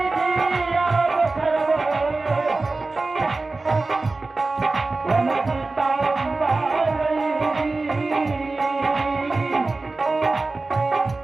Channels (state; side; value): quieter; left; 3.4 dB